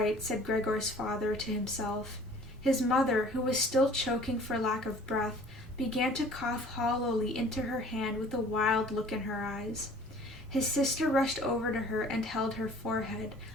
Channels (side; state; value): both; normal; correlation 0.51